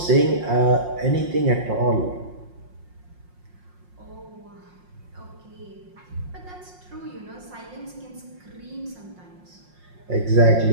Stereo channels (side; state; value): left; late; 5.6 ms